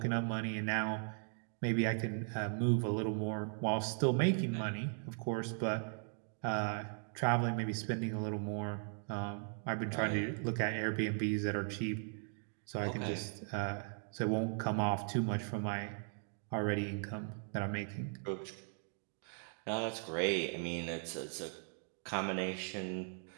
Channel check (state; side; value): silent; left; 52 dB below the other